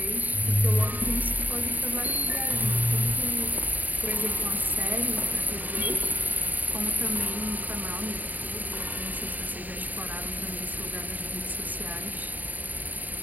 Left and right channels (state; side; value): late; left; 0.083 ms